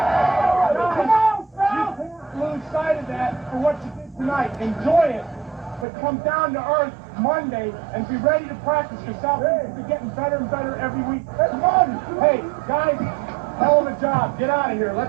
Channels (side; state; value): left; drops out; at 5.9 s